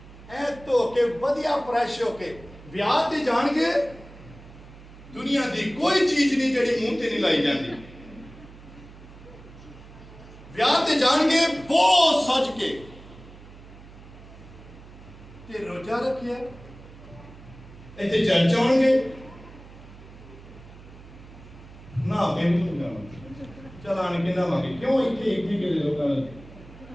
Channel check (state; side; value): noise; right; hum, 19 dB below the sound